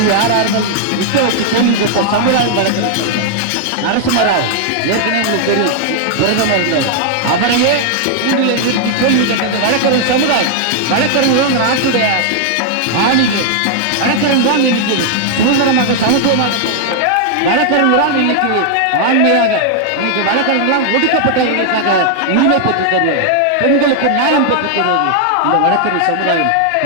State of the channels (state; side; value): different; both; correlation 0.00